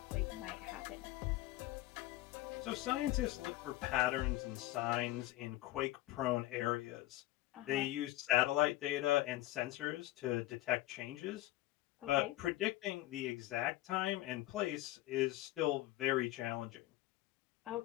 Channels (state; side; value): quieter; right; 16.8 dB